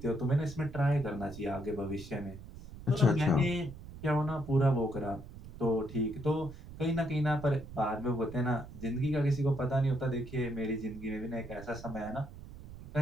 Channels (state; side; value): noise; right; rumble, 14 dB below the sound